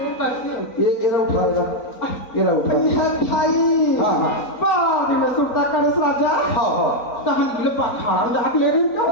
ये रहा उठाएगा ये रहा उठाएगा ये भाई हाँ हाँ बाहर में सुरता करस राजा हाँ हाँ तहन गिल पखार जाके ले रहे क्या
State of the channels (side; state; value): right; late; 3.9 ms